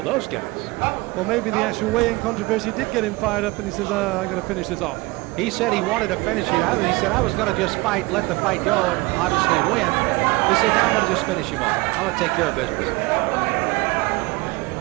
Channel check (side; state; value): left; quieter; 23.7 dB